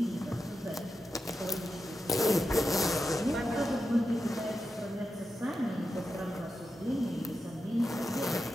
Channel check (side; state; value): both; normal; correlation 0.89